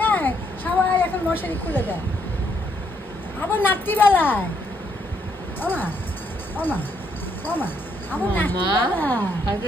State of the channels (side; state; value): both; normal; correlation 0.73